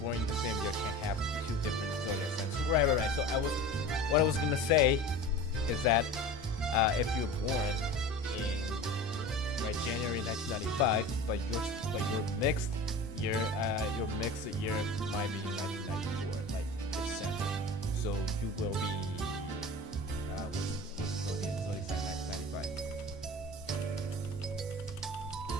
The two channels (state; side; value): normal; both; correlation 0.35